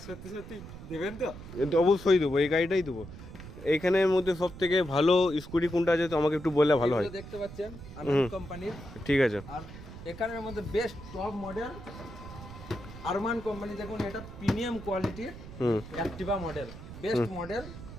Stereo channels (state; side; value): noise; right; rumble, 14 dB below the sound